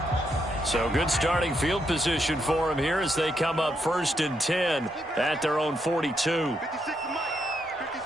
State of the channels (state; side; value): normal; both; correlation 0.79